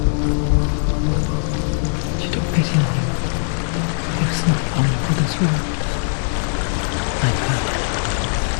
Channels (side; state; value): right; silent; 66 dB below the other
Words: She took pity on him, for he was not long for this world. Like her,